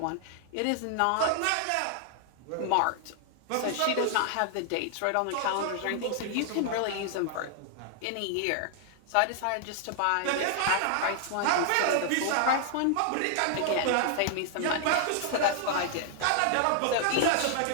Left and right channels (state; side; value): different; both; correlation 0.00